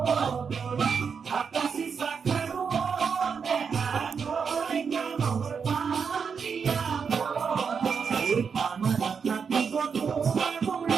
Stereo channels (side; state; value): left; quieter; 6.1 dB